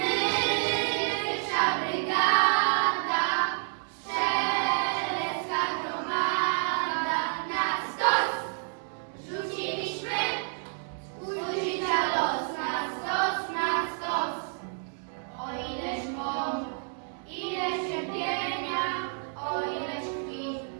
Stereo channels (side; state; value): left; silent; 58 dB below the other